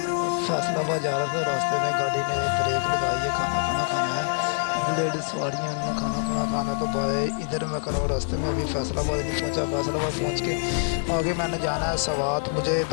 फैसलाबाद जा रहा था, रास्ते में गाड़ी ने ब्रेक लगाई है, खाना खाया है, लेडीज़ सवारियाँ ने खाना तो भाई इधर मैं कर रहा हूँ रास्ते में। अभी फैसलाबाद नहीं पहुँचा, फैसलाबाद पहुँच के आगे मैंने जाना है सवात। मुझे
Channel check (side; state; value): right; silent; 60 dB below the other